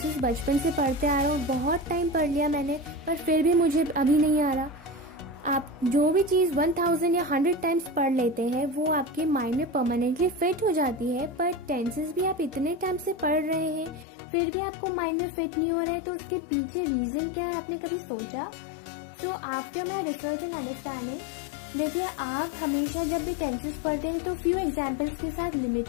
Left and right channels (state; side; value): drops out; right; at 14.1 s